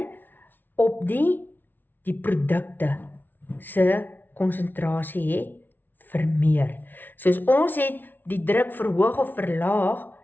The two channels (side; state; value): right; late; 0.091 ms